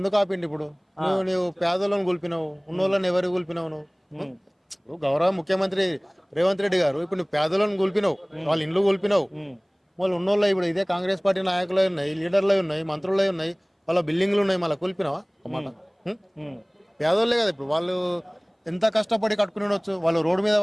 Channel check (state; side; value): identical; both; correlation 1.00